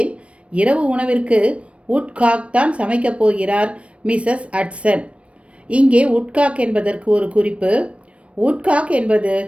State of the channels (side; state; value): left; late; 0.062 ms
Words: இரவு உணவிற்கு உட்காக் தான் சமைக்கப் போகிறார் மிஸ்ஸஸ் ஹட்சன். இங்கே உட்காக் என்பதற்கு ஒரு குறிப்பு. உட்காக் என்பது